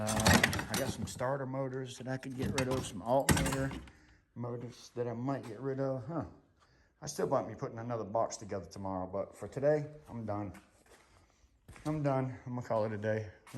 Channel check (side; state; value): both; identical; correlation 1.00